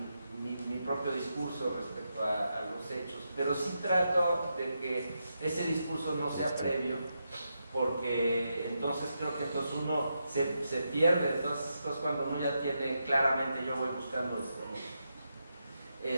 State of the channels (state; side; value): inverted; both; correlation -0.85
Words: mi propio discurso respecto a los hechos, pero sí trato de que ese discurso no sea previo, porque entonces creo que entonces uno se pierde. Entonces cuando uno ya tiene claramente yo voy buscando esto, ¿no?